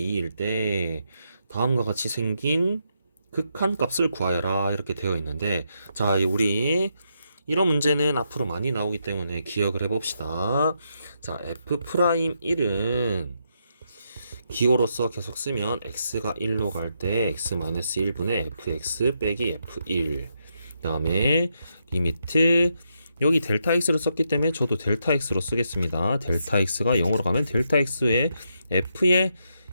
때 다음과 같이 생긴 극한 값을 구하여라 이렇게 되어 있는데, 자, 우리 이런 문제는 앞으로 많이 나오기 때문에 기억을 해봅시다. 자, f'1은 기호로서 계속 쓰면 x가 1로 갈 때 x-1분의 fx 빼기 f1, 그 다음에 리미트 여기 델타 x로 썼기 때문에 저도 델타 x로 쓰겠습니다. 델타 x가 0으로 가면 델타 x에 f에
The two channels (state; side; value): inverted; both; correlation -0.80